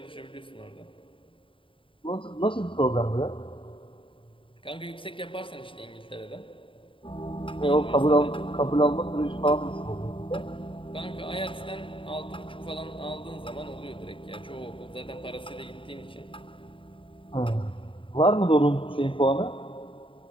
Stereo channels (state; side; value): late; right; 0.25 ms